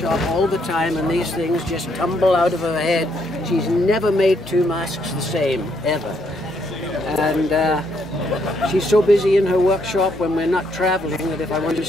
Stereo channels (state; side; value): normal; both; correlation 0.73